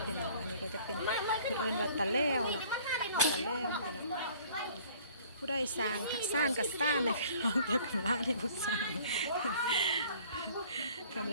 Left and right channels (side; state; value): both; inverted; correlation -0.52